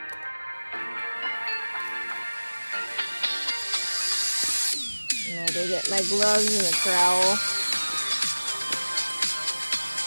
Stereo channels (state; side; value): inverted; both; correlation -1.00